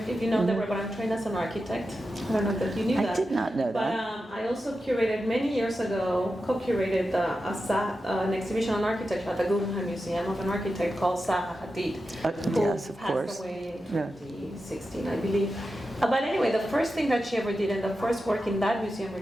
you know Deborah, but I'm trained as an architect. I don't know that you knew that. I did not know that. But I also curated, many years ago, co-curated an exhibition on architecture at the Guggenheim Museum of an architect called Zaha Hadid, yes, of who course. passed away in 2016, I believe. But anyway, the first thing that she ever did, and the first work in that museum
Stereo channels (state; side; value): normal; both; correlation 0.91